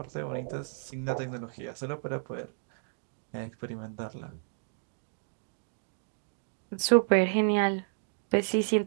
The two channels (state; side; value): silent; left; digital silence